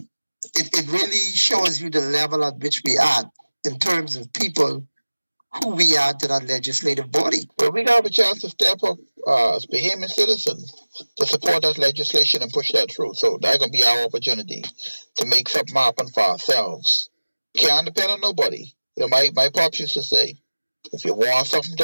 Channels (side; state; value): both; inverted; correlation -1.00